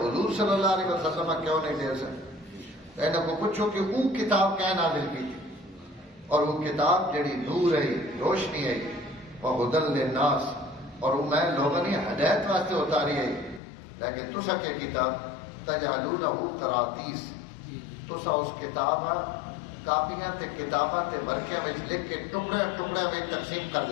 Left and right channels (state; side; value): drops out; right; at 13.6 s